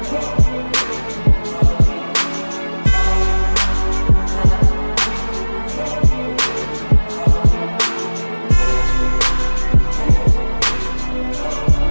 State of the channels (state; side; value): inverted; both; correlation -1.00